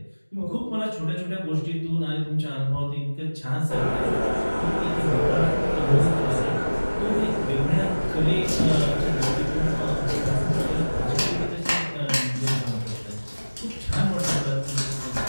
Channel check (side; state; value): both; inverted; correlation -1.00